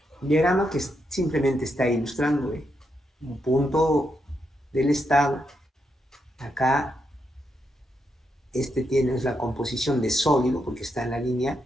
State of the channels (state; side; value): normal; both; correlation 0.82